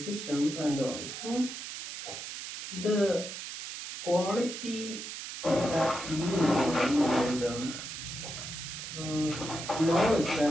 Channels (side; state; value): right; noise; hiss, 8 dB below the sound